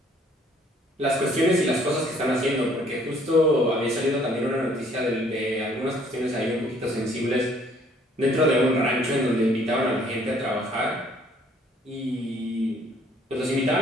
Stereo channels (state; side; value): normal; both; correlation 0.61